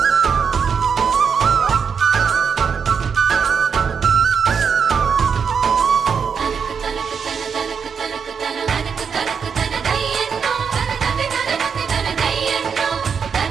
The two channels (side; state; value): left; quieter; 6.4 dB